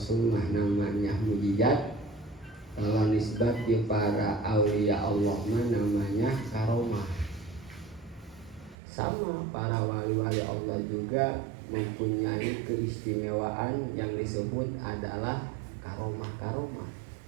mah namanya mukjizat, kalau nisbat di para aulia Allah mah namanya karomah. Sama para wali-wali Allah juga mempunyai keistimewaan yang disebut adalah karomah.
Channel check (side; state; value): left; drops out; at 8.8 s